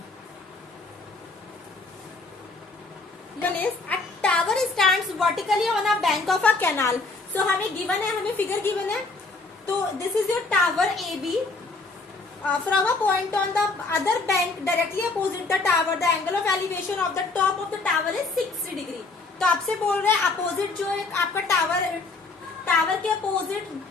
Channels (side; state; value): right; quieter; 3.6 dB